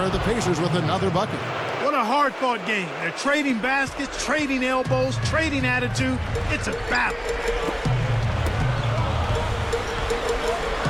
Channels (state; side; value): identical; both; correlation 1.00